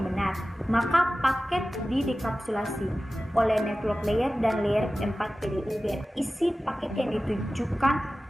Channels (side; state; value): both; normal; correlation 0.96